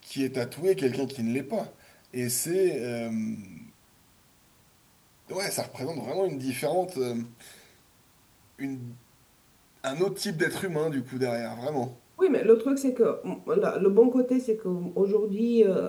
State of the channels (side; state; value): both; identical; correlation 1.00